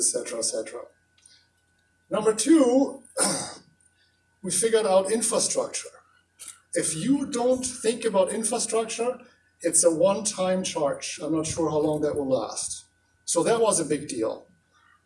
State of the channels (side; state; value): both; identical; correlation 1.00